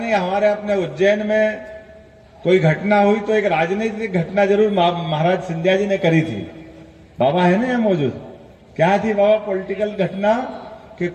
हमारे अपने उज्जैन में कोई घटना हुई तो एक राजनीतिक घटना जरूर महाराज सिंधिया जी ने करी थी। बाबा है ना यहाँ मौजूद? क्या थी बाबा पॉलिटिकल घटना? कि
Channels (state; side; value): identical; both; correlation 1.00